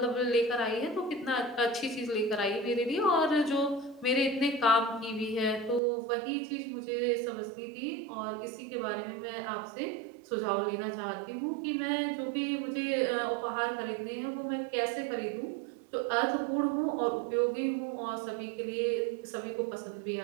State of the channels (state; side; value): drops out; left; at 5.8 s